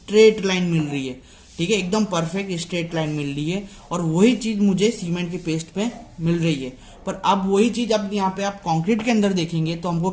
लाइन मिल रही है, ठीक है, एकदम परफेक्ट स्ट्रेट लाइन मिल रही है, और वही चीज मुझे सीमेंट के पेस्ट पे मिल रही है। पर अब वही चीज अब यहाँ पे आप कंक्रीट के अंदर देखेंगे तो हमको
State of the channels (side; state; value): both; identical; correlation 1.00